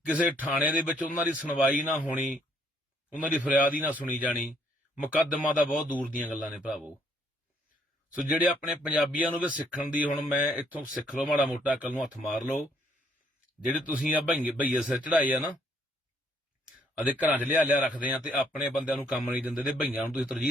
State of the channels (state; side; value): normal; both; correlation 0.68